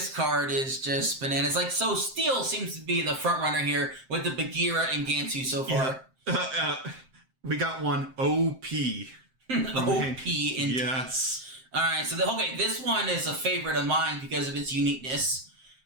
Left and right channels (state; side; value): late; left; 7.6 ms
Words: card is just bananas. Like, so Steel seems to be the front runner here with the Bagheera and Gantu so far. We got one OP. OP indeed. Yes. Alright, so this one is a favorite of mine because of its uniqueness.